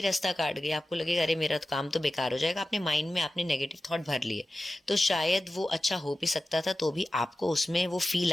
रास्ता काट गई, आपको लगेगा अरे मेरा तो काम तो बेकार हो जाएगा, अपने माइंड में आपने नेगेटिव थॉट भर लिए, तो शायद वो अच्छा हो भी सकता था तो भी आपको उसमें वो फील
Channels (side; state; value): both; normal; correlation 0.94